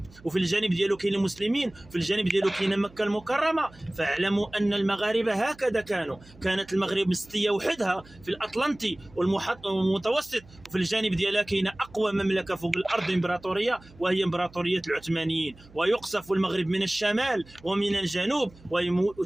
وفي الجانب ديالو كاين المسلمين، وفي الجانب ديالو كاين مكه المكرمه. فاعلموا ان المغاربه هكذا كانت المغرب مستوحدها في الاطلنطي والمتوسط، وفي الجانب ديالها كاينه اقوى مملكه فوق الارض امبراطوريه، وهي امبراطوريه العثمانيين. ويقصف المغرب من الشمال ومن الجنوب،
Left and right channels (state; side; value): noise; right; hum, 24 dB below the sound